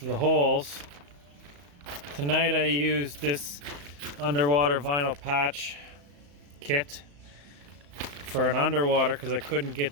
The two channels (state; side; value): late; left; 35 ms